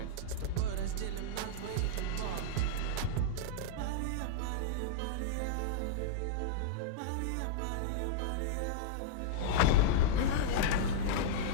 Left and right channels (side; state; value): both; different; correlation -0.02